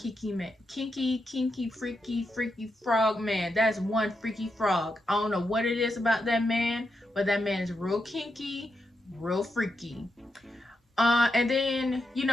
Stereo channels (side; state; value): both; normal; correlation 0.85